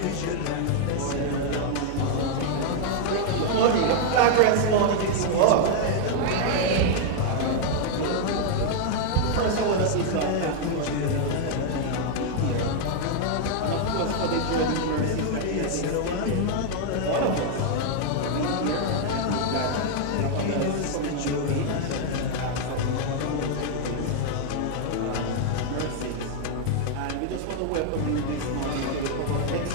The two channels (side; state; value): both; different; correlation 0.00